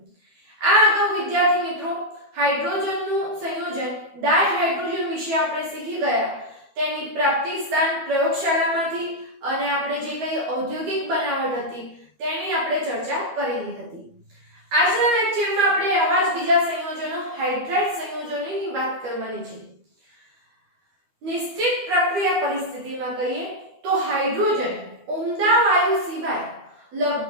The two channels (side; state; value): left; late; 12 ms